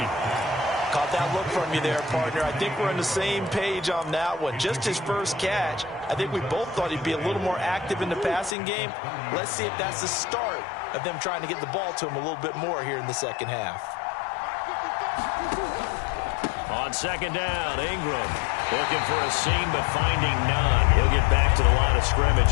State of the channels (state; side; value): drops out; right; at 8.6 s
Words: Caught that look from you there, partner. I think we're on the same page on that one. Just his first catch. I think we both thought he'd be a little more active in the passing game. Let's see if that's the start of them trying to get the ball to him a little bit more here in the second half. On second down, Ingram looking for a seam but finding none. He'll get back to the line of